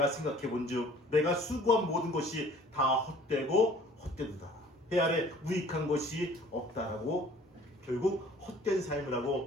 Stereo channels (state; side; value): normal; both; correlation 0.52